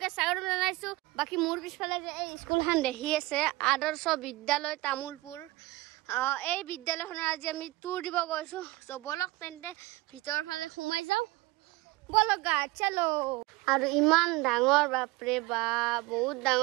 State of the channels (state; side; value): quieter; left; 20.3 dB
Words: স্বাগতম জনাইছো বাকি মোৰ পিছফালে যে এই স্কুলখন দেখি আছে আদৰ্শ বিদ্যালয় তামুলপুৰ এই বিদ্যালয়খনৰ আজি আমি টুৰ দিব গৈছো সো বলক তেন্তে ভিতৰ ফালে সোমাই যাও বলক গা চলো আৰু ইমান ডাঙৰ বাপৰে বা বহুত